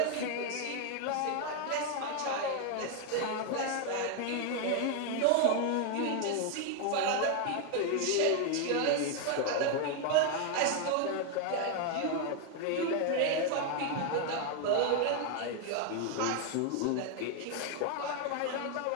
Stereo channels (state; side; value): different; both; correlation 0.01